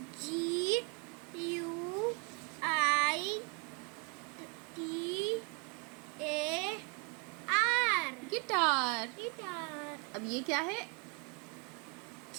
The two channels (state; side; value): quieter; left; 34.1 dB